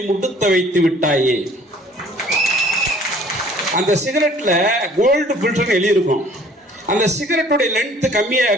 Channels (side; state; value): both; normal; correlation 0.54